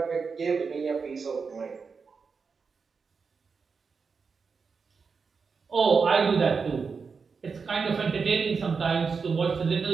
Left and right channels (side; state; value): left; quieter; 5.2 dB